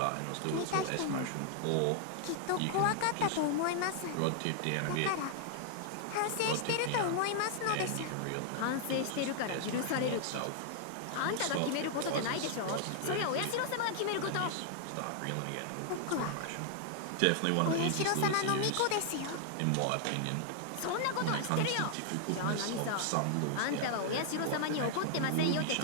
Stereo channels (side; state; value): both; different; correlation 0.00